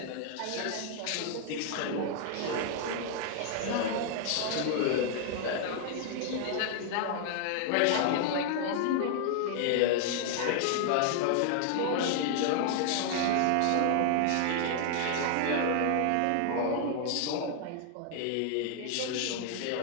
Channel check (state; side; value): different; both; correlation 0.00